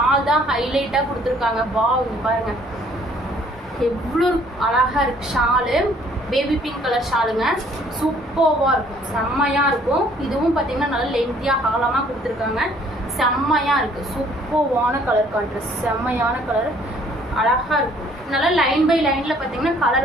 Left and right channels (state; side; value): normal; both; correlation 0.60